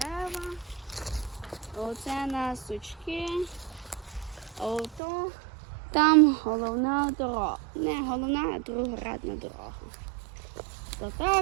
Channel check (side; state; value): left; drops out; at 5.0 s